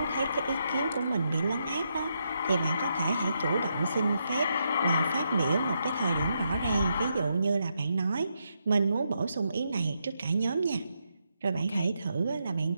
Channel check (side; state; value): both; inverted; correlation -0.81